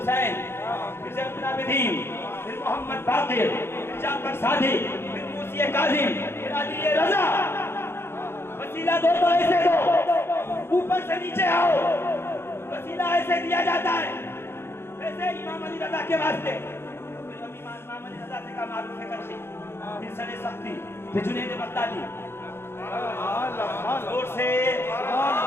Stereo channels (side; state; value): right; late; 0.12 ms